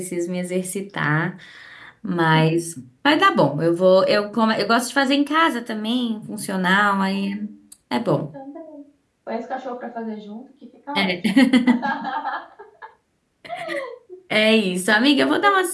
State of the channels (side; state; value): both; identical; correlation 1.00